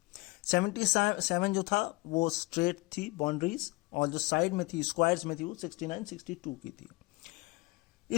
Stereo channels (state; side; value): quieter; right; 24.1 dB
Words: 77 जो था वो स्ट्रेट थी बाउंड्रीज, और जो साइड में थी स्क्वायर्स में थी वो 69-62 की थी।